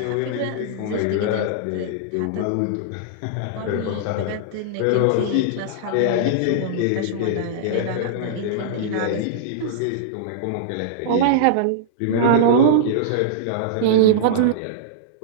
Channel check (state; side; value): different; both; correlation -0.02